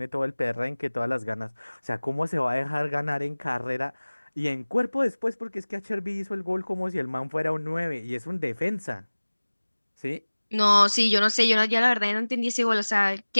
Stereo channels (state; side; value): inverted; both; correlation -1.00